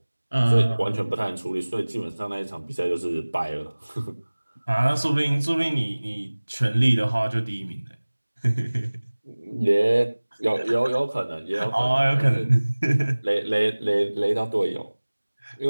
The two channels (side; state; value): both; inverted; correlation -1.00